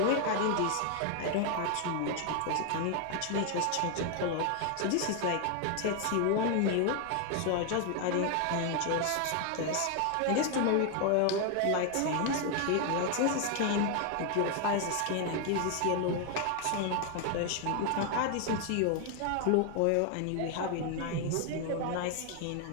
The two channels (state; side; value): different; both; correlation 0.01